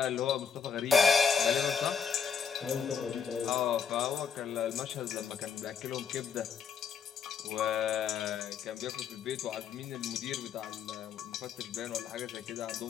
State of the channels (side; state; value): right; quieter; 6.7 dB